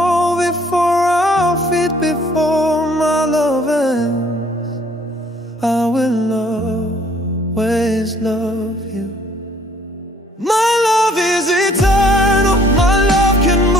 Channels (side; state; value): both; normal; correlation 0.60